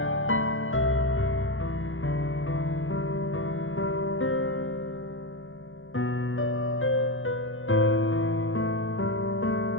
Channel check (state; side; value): late; right; 0.59 ms